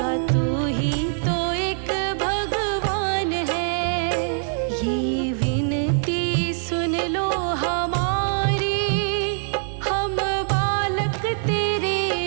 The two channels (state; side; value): silent; left; digital silence